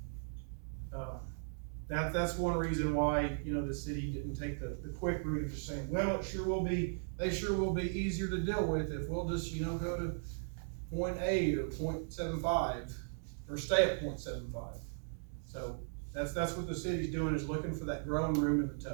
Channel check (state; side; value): silent; left; digital silence